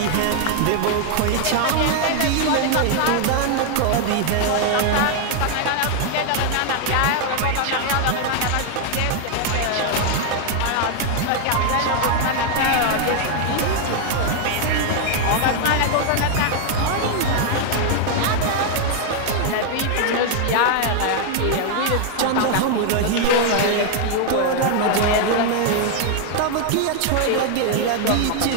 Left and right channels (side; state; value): both; different; correlation 0.00